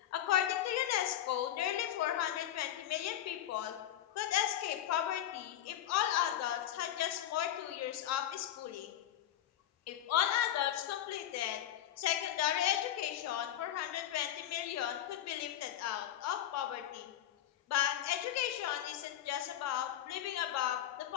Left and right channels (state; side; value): quieter; right; 11.7 dB